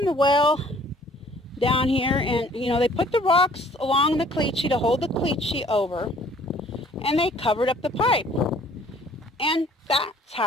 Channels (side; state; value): both; normal; correlation 0.56